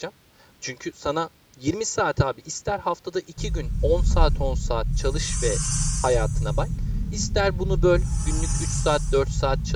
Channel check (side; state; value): both; identical; correlation 1.00